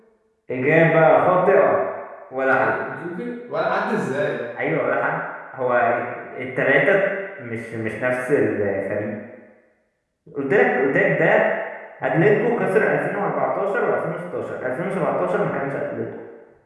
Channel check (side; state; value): both; identical; correlation 1.00